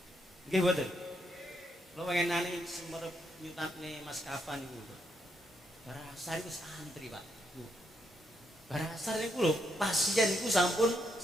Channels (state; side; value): normal; both; correlation 0.78